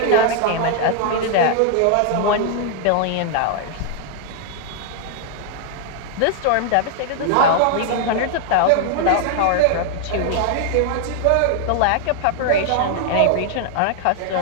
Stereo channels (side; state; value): both; different; correlation 0.00